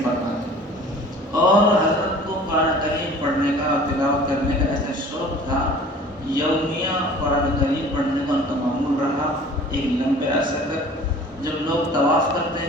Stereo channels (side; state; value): both; normal; correlation 0.46